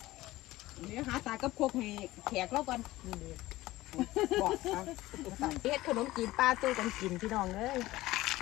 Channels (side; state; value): right; quieter; 17.6 dB